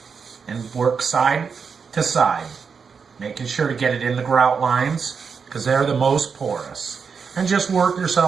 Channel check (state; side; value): quieter; left; 5.9 dB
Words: and work side to side, making sure to get it in the grout lines because they're the most porous. And just work